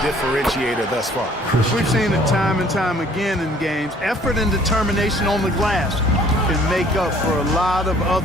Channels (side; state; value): both; normal; correlation 0.57